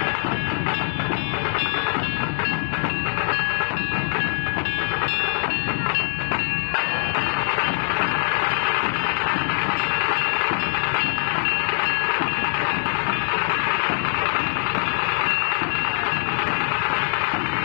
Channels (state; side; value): silent; right; digital silence